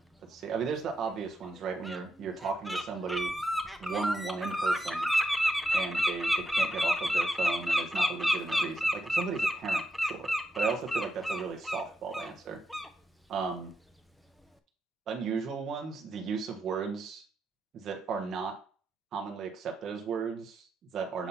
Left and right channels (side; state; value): both; normal; correlation 0.83